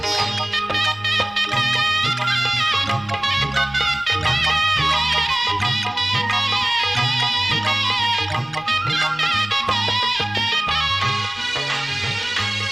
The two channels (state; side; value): noise; left; rumble, 26 dB below the sound